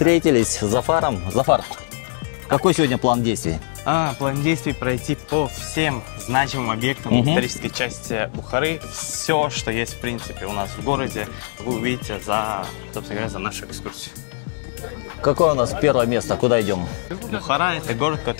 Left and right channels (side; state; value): right; silent; digital silence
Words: с Зафаром. Зафар, какой сегодня план действий? План действий пройти по всем значимым объектам исторической части Бухары. Все, что есть, в принципе, у нас в городе, вы увидите за, собственно говоря, за нашу экскурсию. Какое у нас первое место? Куда идем? Бухара – это город,